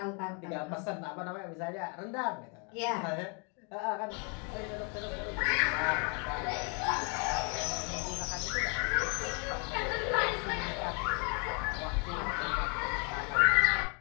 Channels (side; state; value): right; quieter; 36.2 dB